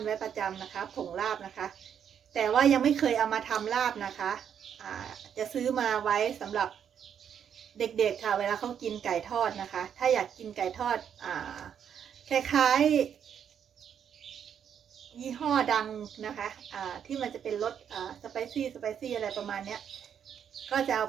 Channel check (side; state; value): left; quieter; 8.4 dB